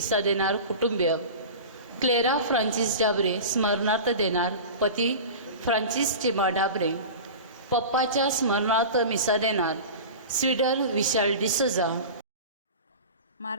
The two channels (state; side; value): inverted; both; correlation -0.32